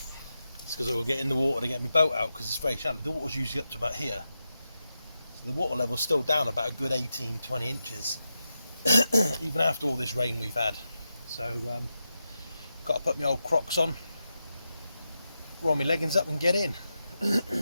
because I will get in the water to get my boat out because it's very shallow. The water's usually up to about here. So the water level's still down about a good 18-20 inches. Even after all this rain we've had. So got to put my old Crocs on, roll my leggings up and get in. Should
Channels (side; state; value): both; inverted; correlation -0.88